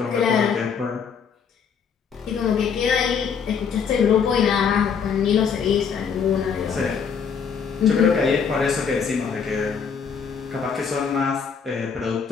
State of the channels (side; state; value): right; quieter; 6.5 dB